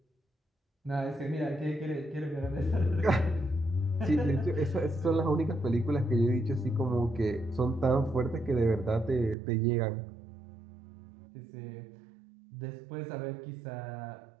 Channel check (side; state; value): left; drops out; at 9.3 s